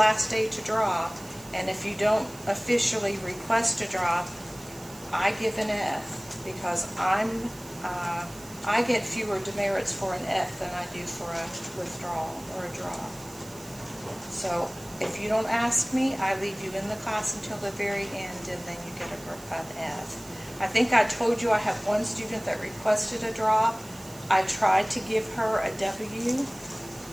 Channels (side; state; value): right; noise; hiss, 19 dB below the sound